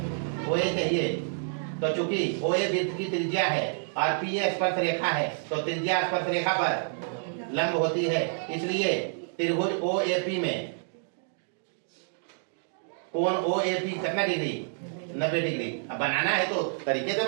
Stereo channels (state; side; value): silent; left; digital silence